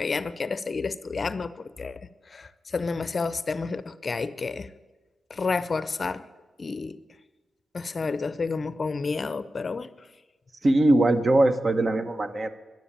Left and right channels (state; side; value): normal; both; correlation 0.91